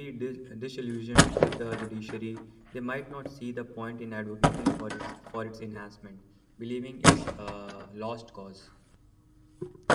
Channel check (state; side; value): identical; both; correlation 1.00